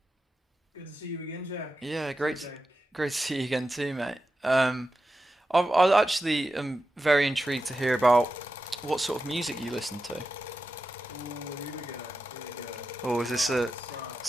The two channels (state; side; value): normal; both; correlation 0.91